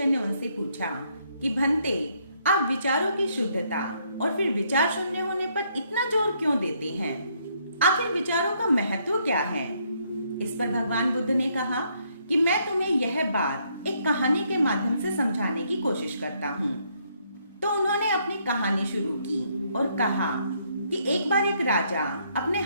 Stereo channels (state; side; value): inverted; both; correlation -0.71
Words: ने उनसे पूछा कि भंते, आप विचारों की शुद्धता और फिर विचार शून्य होने पर इतना जोर क्यों देते हैं? आखिर विचारों का महत्व क्या है? इस पर भगवान बुद्ध ने कहा कि मैं तुम्हें यह बात एक कहानी के माध्यम से समझाने की कोशिश करता हूँ। तो उन्होंने अपनी कहानी शुरू की और कहा कि एक बार एक राजा अपने